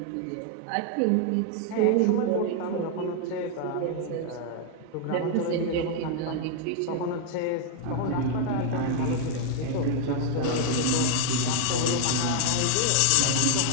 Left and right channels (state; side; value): different; both; correlation 0.00